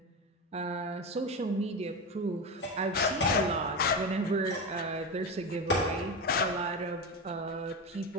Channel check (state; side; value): normal; both; correlation 0.19